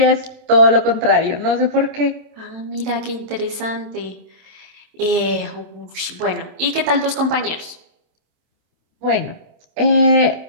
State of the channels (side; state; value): left; late; 27 ms